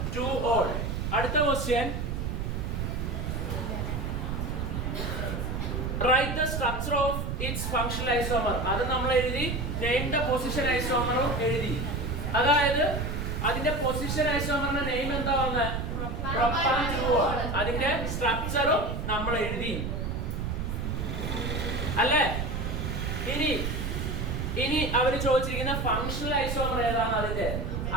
2-ol. അടുത്ത question, write the structure of its functional isomer. അത് നമ്മൾ എഴുതി. name the position isomer എഴുതി. അതായത് അതിന്റെ പൊസിഷൻ ഐസോമറിന്റെ നെയിം എന്താ വന്നത്? Propane 2-ol. അതിന്റെ സ്ട്രക്ചറും നമ്മൾ എഴുതി അല്ലേ? ഇനി അവര് ചോദിച്ചിരിക്കുന്ന ഫംഗ്ഷണൽ ഐസോമർ ഏതാണ്? അതിന്റെ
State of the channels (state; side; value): noise; right; rumble, 2 dB below the sound